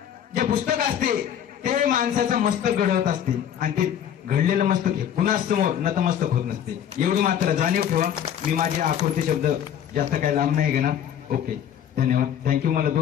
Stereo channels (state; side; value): quieter; right; 9.6 dB